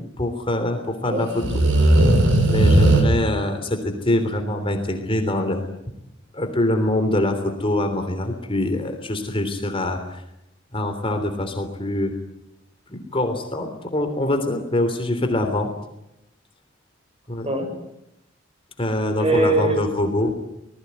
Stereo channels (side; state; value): both; normal; correlation 0.64